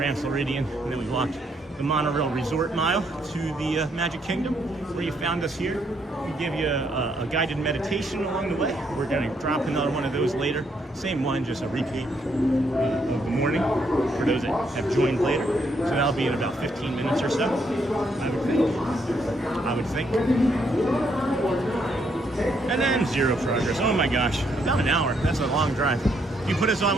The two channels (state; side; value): normal; both; correlation 0.73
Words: Floridian, and then we walked the monorail resort mile to the Magic Kingdom, where you found us here. We give you a guided meditation along the way. We're going to drop another one of those later. Same one, just a repeat of the morning for those that have joined later. So that'll be in about 15 minutes or so, I would think. And then zero progress. Oh my gosh, about an hour. That's a long drive. Do you put us on